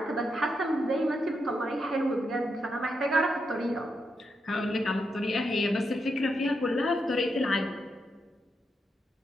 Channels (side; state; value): both; normal; correlation 0.83